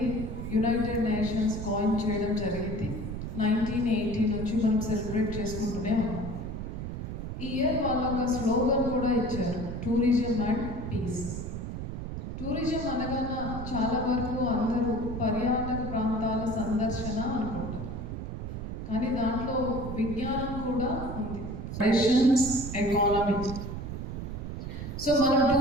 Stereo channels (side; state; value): right; noise; rumble, 6 dB below the sound